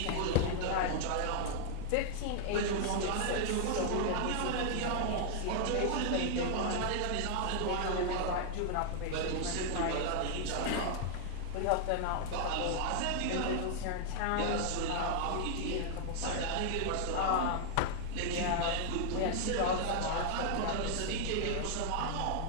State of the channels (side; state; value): both; different; correlation 0.00